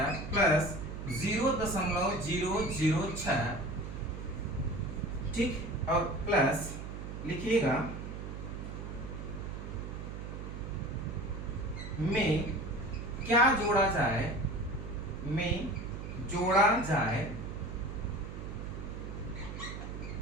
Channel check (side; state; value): right; noise; hum, 7 dB below the sound